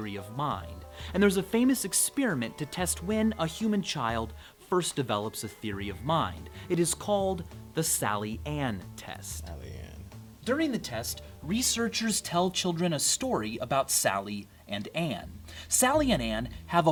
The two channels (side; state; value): both; identical; correlation 1.00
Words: of mind, and there's a famous experiment to test when a human child first develops a theory of mind. It is called the Sally-Ann test. During the test, researchers tell children a story about Sally and Ann. Sally and Ann have